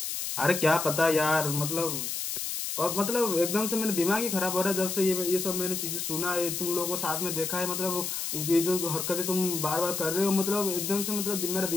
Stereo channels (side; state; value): left; noise; hiss, 3 dB below the sound